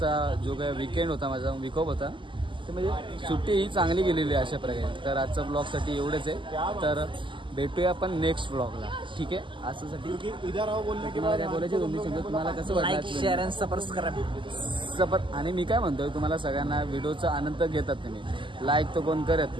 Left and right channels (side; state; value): left; late; 0.24 ms